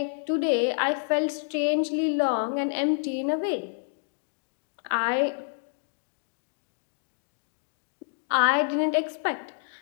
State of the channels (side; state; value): right; silent; digital silence